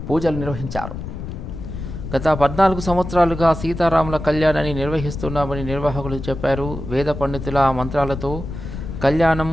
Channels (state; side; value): noise; left; rumble, 8 dB below the sound